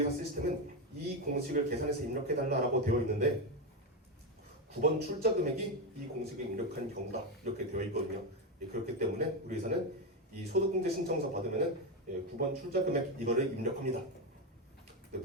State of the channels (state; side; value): normal; both; correlation 0.10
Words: 시스템은 이 공식을 계산해서 입력해달라고 되어 있는데 9번 출자 금액이 이 공식을 입력한 경우다 이렇게 되어 있거든요. 그렇기 때문에 우리 회사는 이 소득공제 신청서 받으면은 9번 출자 금액 이거를 입력합니다.